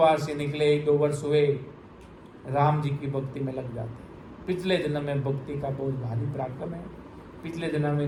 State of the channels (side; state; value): both; identical; correlation 1.00